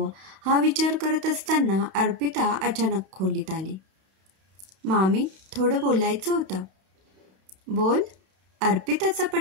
हा विचार करत असताना अर्पिता अचानक खोलीत आली. मामी, थोडं बोलायचं होतं. बोल. अर्पिताचा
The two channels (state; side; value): late; left; 31 ms